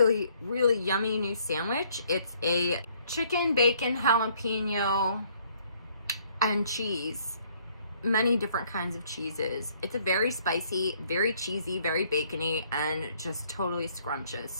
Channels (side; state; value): both; inverted; correlation -0.64